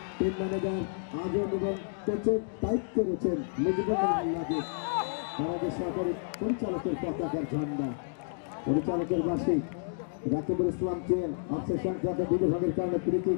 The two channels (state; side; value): silent; right; digital silence